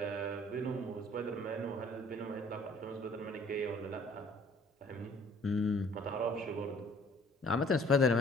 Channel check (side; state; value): both; normal; correlation 0.56